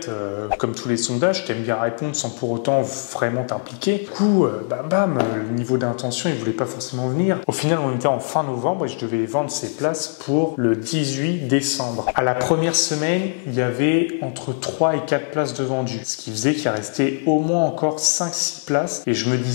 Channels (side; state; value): right; silent; digital silence